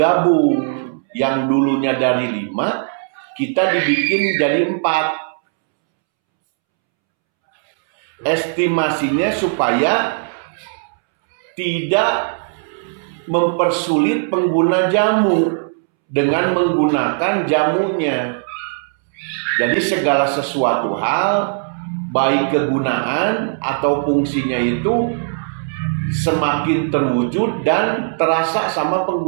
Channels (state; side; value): silent; left; 67 dB below the other